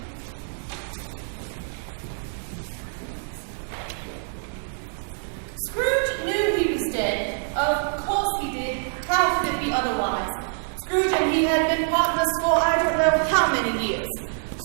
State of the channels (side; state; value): left; silent; 61 dB below the other